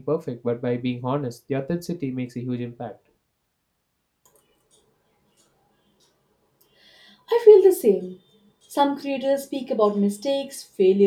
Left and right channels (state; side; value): identical; both; correlation 1.00